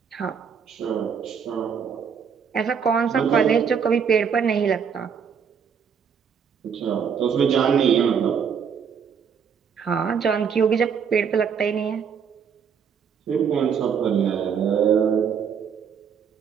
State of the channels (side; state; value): left; quieter; 7.0 dB